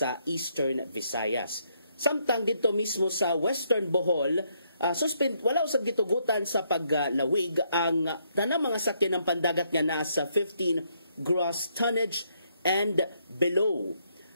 Eastern Visayas. Samtang dito mismo sa Western Bohol, wala usab gitugutan sa paglawig ang tanang mga sakyan ng pandagat nga nasa 15 gross tonnage and below.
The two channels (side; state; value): both; inverted; correlation -0.74